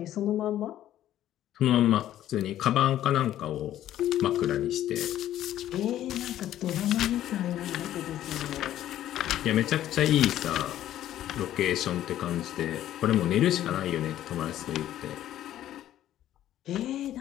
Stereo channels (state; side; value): quieter; right; 12.5 dB